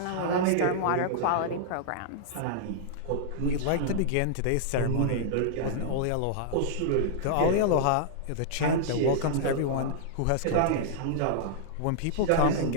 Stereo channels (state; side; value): different; both; correlation -0.02